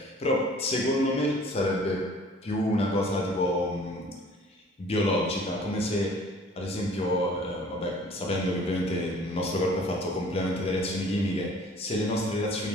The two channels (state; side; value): normal; both; correlation 0.52